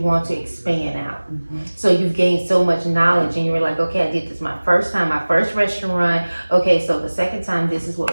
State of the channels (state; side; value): inverted; both; correlation -1.00